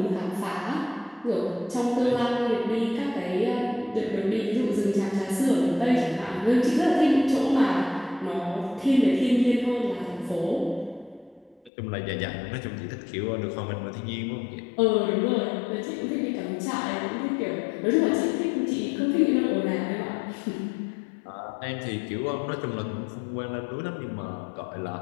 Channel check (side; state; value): right; drops out; at 11.7 s